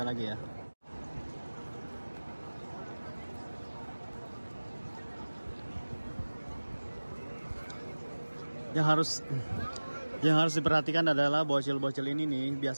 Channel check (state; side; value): inverted; both; correlation -1.00